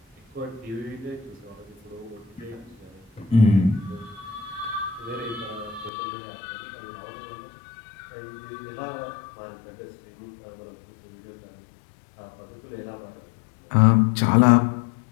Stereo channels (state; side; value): drops out; right; at 5.9 s